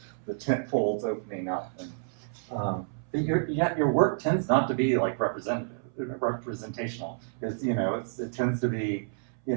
tent folds opening up. And your work tends not to be like representational, because it tends to be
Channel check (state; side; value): silent; left; 58 dB below the other